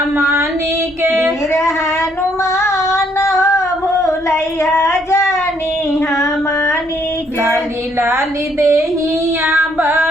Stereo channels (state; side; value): normal; both; correlation 0.69